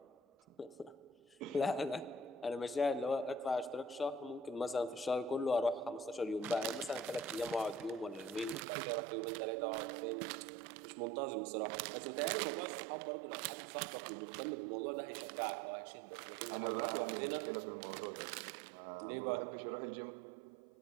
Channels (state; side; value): drops out; left; at 8.7 s